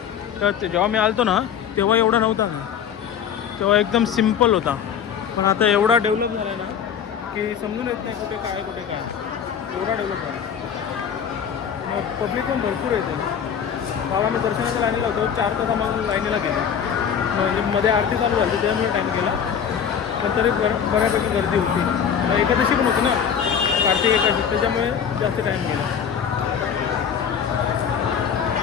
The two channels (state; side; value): quieter; right; 7.9 dB